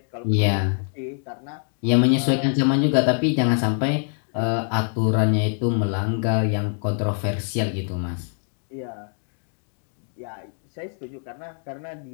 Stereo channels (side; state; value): right; silent; 57 dB below the other